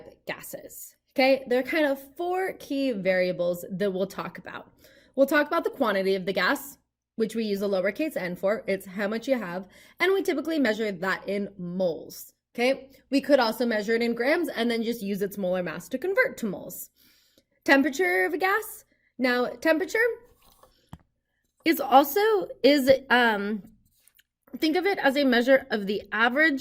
gases? Okay, there are kind of four key variables that we'll talk about. We'll talk about the quantity of the gas, which we use a lowercase n for. It's how much you have, and we typically measure that in moles, okay? We could also measure it in grams and then just use its molar mass to convert to moles. Temperature of a gas. Now, temperature is think of it as a measure of the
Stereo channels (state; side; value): identical; both; correlation 1.00